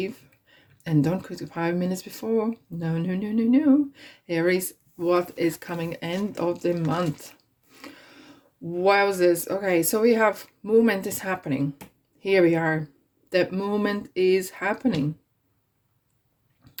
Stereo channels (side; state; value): both; identical; correlation 1.00